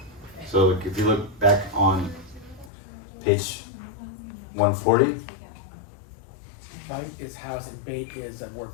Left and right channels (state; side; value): drops out; right; at 2.7 s